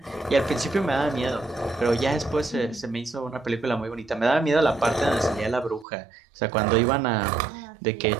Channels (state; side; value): drops out; left; at 5.9 s